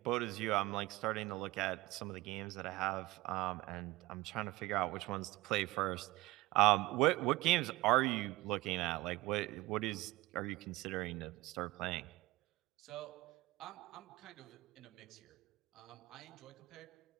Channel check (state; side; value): quieter; left; 19.7 dB